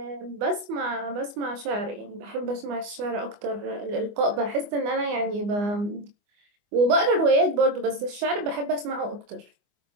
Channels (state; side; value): late; left; 24 ms